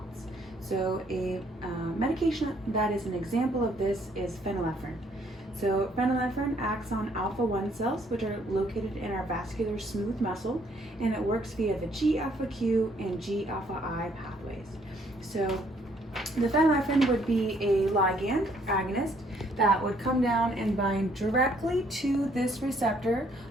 So a medication that is an example of this is phenylephrine. So phenylephrine acts on alpha-1 cells, which are located in our vascular smooth muscle, and it works via the G-alpha-Q and G-alpha-I pathways. So the phenylephrine would be a ligand agonist that would come down and bind directly to this receptor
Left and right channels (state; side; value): normal; both; correlation 0.66